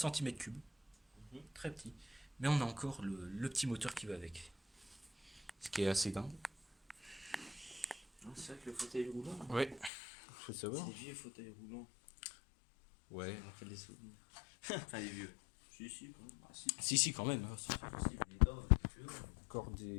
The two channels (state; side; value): drops out; right; at 9.9 s